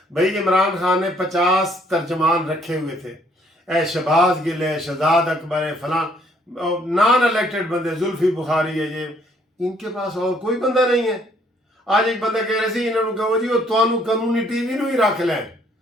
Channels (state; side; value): normal; both; correlation 0.65